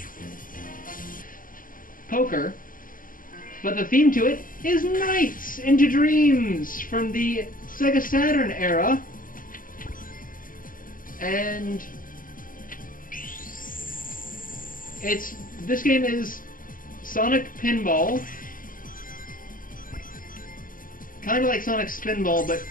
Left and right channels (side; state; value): right; late; 0.40 ms